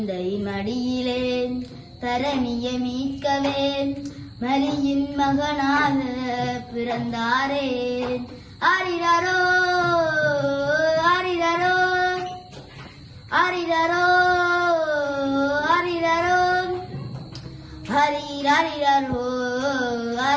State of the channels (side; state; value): both; identical; correlation 1.00